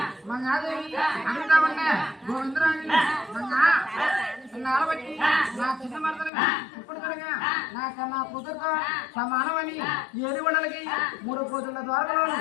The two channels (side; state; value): right; drops out; at 6.3 s